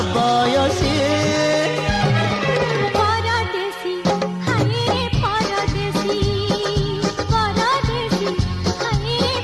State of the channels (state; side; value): identical; both; correlation 1.00